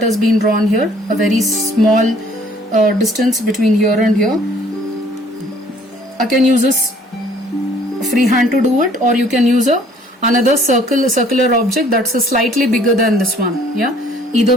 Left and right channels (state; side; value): normal; both; correlation 0.58